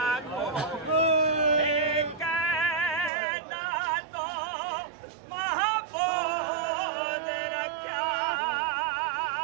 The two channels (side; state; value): left; drops out; at 3.1 s